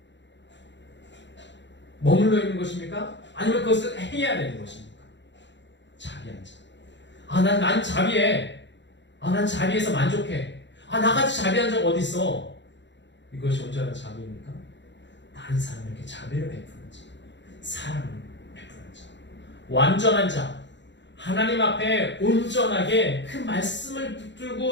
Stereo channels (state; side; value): late; right; 0.52 ms